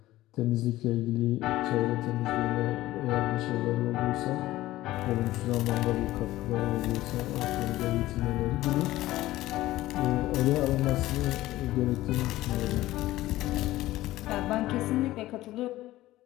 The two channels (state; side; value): quieter; right; 16.3 dB